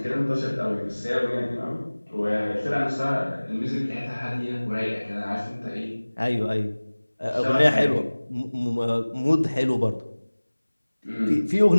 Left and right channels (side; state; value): both; inverted; correlation -1.00